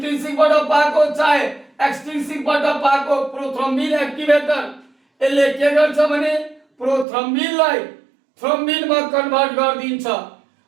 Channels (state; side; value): drops out; left; at 7.1 s